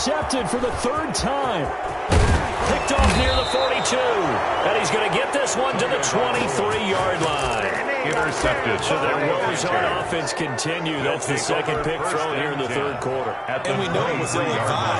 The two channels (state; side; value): identical; both; correlation 1.00